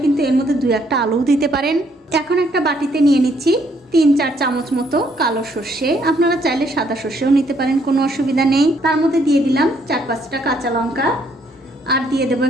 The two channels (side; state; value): both; normal; correlation 0.69